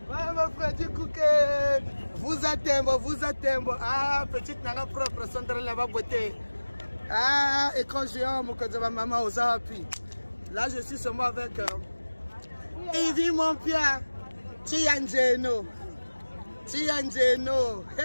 Voilà Freddy Nkouka. Vous attendez. Ah, petite nana propre, centre là-bas beauté. Ah, et quand j'ai un mot que je maman aux appuis. Là, je suis seulement avec Evie, mon père. Tianjeno.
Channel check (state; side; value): inverted; both; correlation -1.00